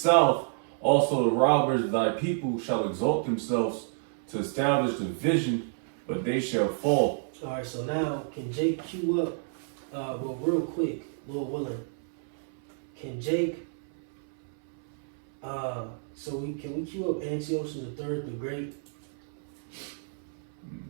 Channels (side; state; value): left; silent; 58 dB below the other